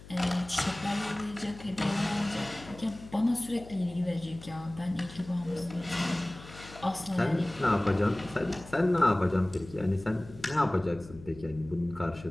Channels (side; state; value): left; noise; hum, 17 dB below the sound